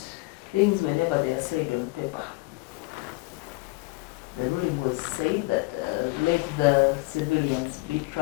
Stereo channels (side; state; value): right; quieter; 24.4 dB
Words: Things whenever they are said on paper. The ruling was said that let the civilians be